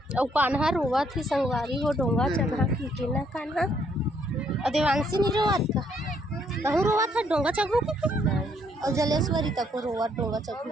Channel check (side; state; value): both; normal; correlation 0.69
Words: और कान्हा रोवा थी संगवारी हो डोंगा चढ़ा के ना कान्हा देवांशी नहीं रोवात का तहु रोवा था डोंगा चढ़ू और जलेश्वरी तक रोवा डोंगा